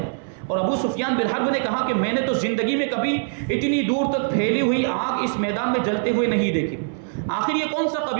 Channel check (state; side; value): silent; left; 60 dB below the other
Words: اور ابو سفیان بن حرب نے کہا کہ میں نے تو زندگی میں کبھی اتنی دور تک پھیلی ہوئی آگ اس میدان میں جلتے ہوئے نہیں دیکھی، آخر یہ کون سا